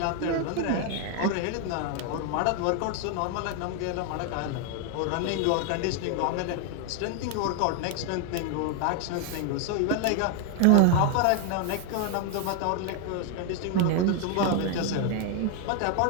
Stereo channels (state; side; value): different; both; correlation 0.00